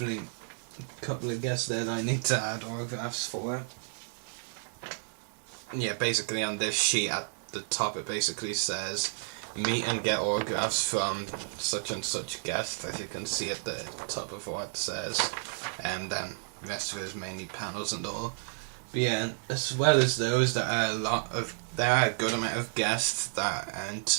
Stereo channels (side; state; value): left; silent; digital silence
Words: a couple of guests there that I need to add autographs for. Yeah, basically on this sheet at the top it basically says meet and get autographs from such and such guest, as you can see at the top of what it says, and then the rest of it is mainly panels and all. But yeah, as well as those, there are a good amount of guests that aren't